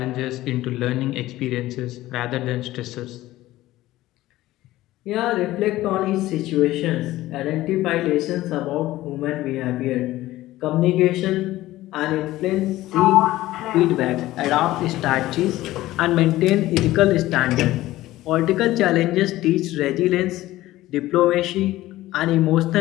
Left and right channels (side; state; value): right; quieter; 16.3 dB